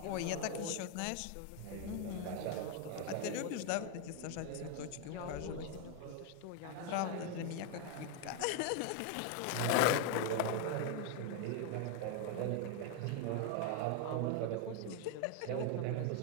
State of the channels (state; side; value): different; both; correlation 0.01